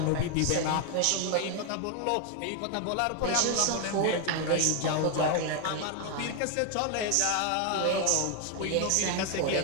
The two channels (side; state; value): both; different; correlation 0.00